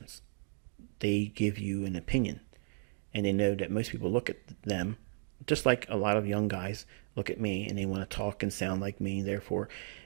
They give you an opinion. And they know that most people look at them, just like a lot of young guys look at me, and they want to talk and sound like me, therefore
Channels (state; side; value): silent; left; digital silence